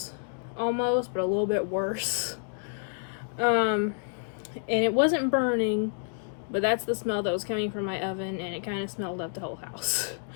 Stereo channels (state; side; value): silent; right; digital silence